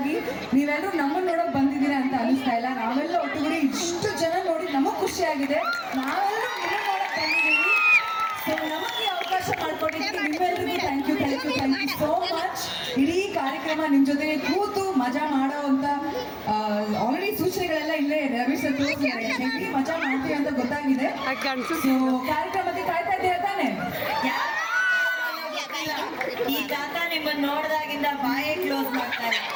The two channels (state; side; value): identical; both; correlation 1.00